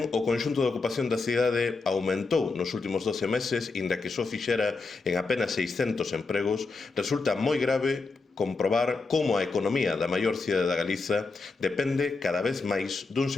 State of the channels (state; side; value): quieter; right; 4.1 dB